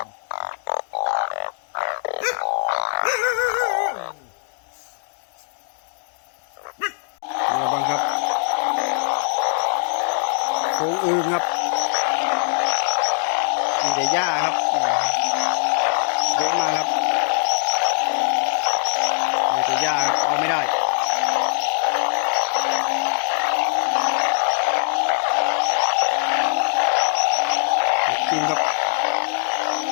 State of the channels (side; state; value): right; silent; digital silence